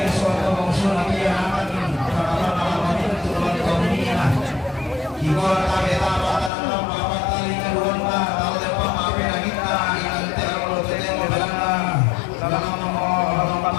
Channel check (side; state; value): right; drops out; at 6.5 s